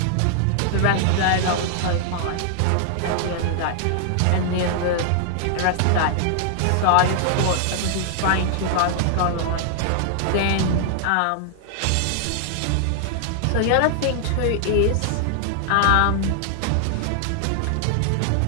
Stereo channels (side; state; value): both; different; correlation 0.00